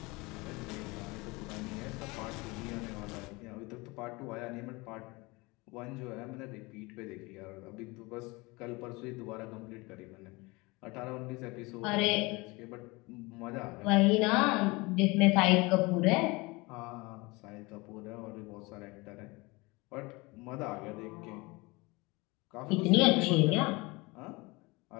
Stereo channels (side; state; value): right; quieter; 24.4 dB